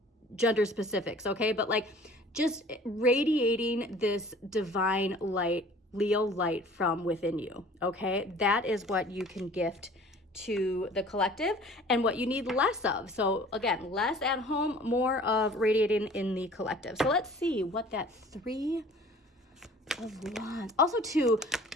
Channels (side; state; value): both; normal; correlation 0.49